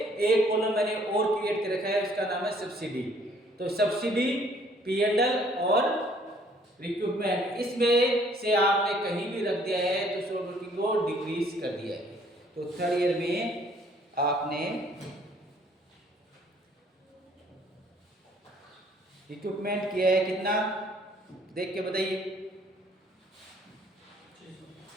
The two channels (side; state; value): both; normal; correlation 0.60